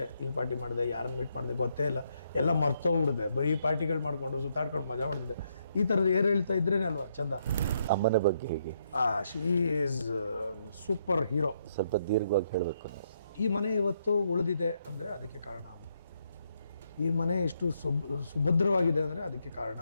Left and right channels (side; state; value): both; inverted; correlation -0.76